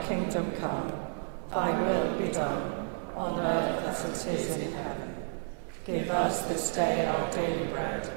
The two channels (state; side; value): silent; left; digital silence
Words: kingdom come, thy will be done, on earth as it is in heaven. Give us this day our daily bread,